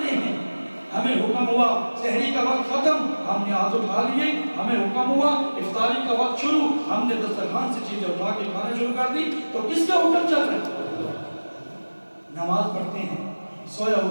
ہیں. ہمیں حکم ہوا سحری کا وقت ختم, ہم نے ہاتھ اٹھا لیے. ہمیں حکم ہوا افطاری کا وقت شروع, ہم نے دسترخوان سے چیزیں اٹھا کے کھانا شروع کر دی. تو کس کا حکم چل رہا ہے؟ نماز پڑھتے ہیں, سویا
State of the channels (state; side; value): inverted; both; correlation -1.00